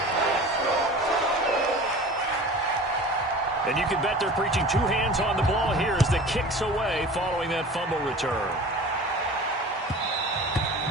And you can bet they're preaching two hands on the ball here as the kick's away following that fumble return.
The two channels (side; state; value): both; normal; correlation 0.39